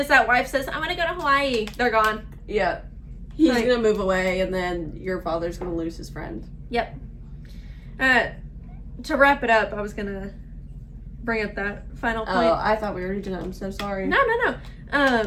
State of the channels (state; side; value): identical; both; correlation 1.00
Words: that wife says, "I'm gonna go to Hawaii," they're gone. Yeah, he's gonna move away, and then your father's gonna lose his friend. Yep. To wrap it up, I was gonna bring up that final point. Oh, I thought we already did it. I'm so sorry. No.